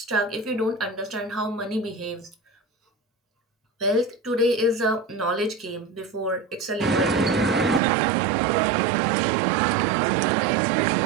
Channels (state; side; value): drops out; left; at 7.8 s